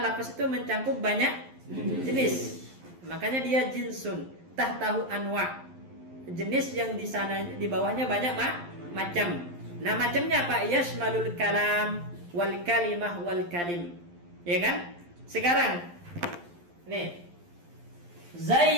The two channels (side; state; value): left; late; 11 ms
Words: itu mencangkup banyak jenis. Makanya dia jinsun, tahtahu anwa. Jenis yang di sana di bawahnya banyak macam. Nah, macamnya apa? Yasmalul kalam wal kalimah wal kalim. Ya kan? Sekarang nih.